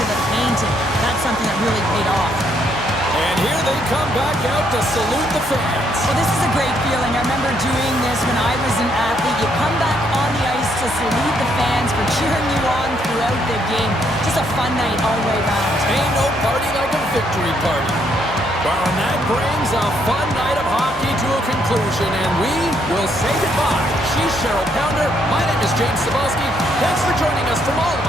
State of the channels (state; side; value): normal; both; correlation 0.72